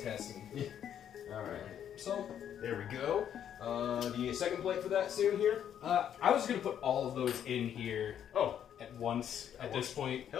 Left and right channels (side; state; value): right; quieter; 9.5 dB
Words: testing. Alright. So There we go. The second plate for that soon here? I was gonna put all of those in here Oh, at once at this point.